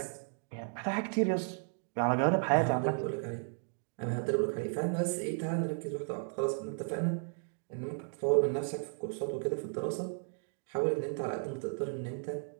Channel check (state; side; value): silent; left; 55 dB below the other